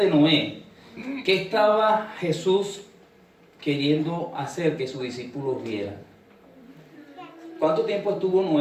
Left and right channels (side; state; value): both; identical; correlation 1.00